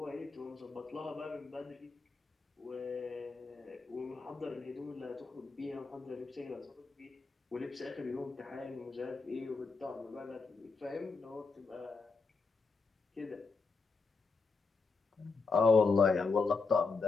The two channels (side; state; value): right; quieter; 4.4 dB